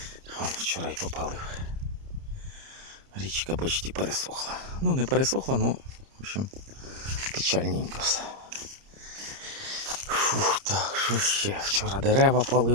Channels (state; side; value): late; left; 30 ms